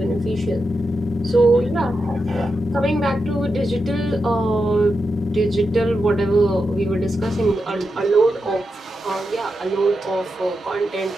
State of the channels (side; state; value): both; normal; correlation 0.87